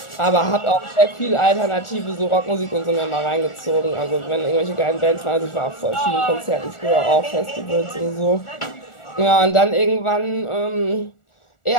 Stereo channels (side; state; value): right; late; 1.4 ms